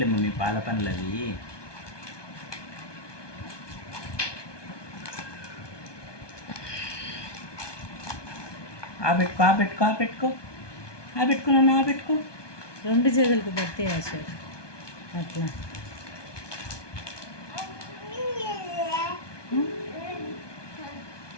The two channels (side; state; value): right; late; 1.2 ms